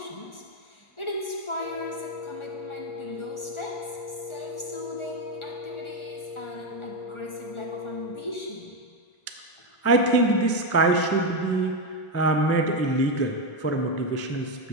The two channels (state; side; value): late; right; 1.4 ms